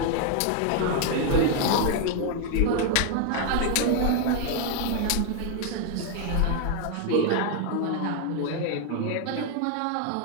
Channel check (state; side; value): different; both; correlation 0.00